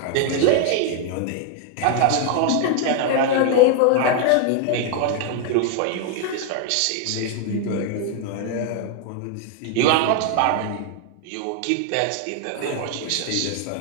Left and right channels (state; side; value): different; both; correlation 0.00